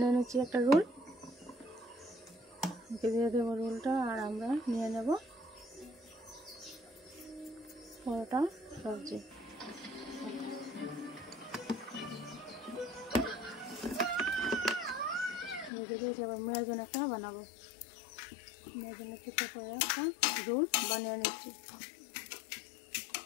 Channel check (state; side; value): drops out; right; at 15.7 s